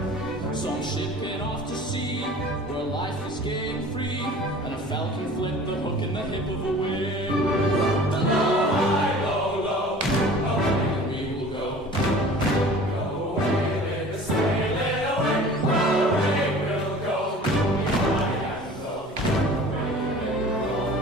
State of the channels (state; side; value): normal; both; correlation 0.44